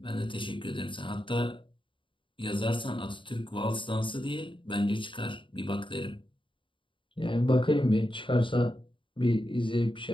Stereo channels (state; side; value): late; right; 0.24 ms